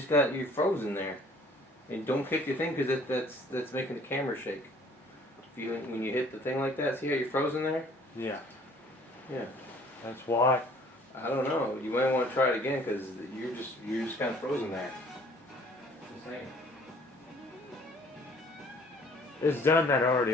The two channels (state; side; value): normal; both; correlation 0.55